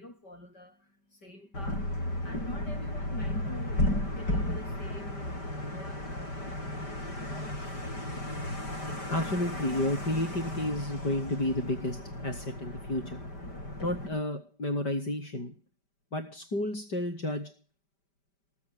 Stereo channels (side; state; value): right; late; 5.1 ms